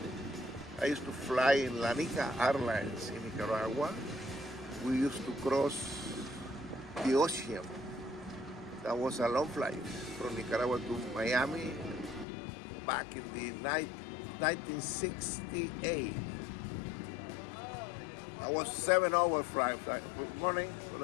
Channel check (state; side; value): drops out; right; at 12.2 s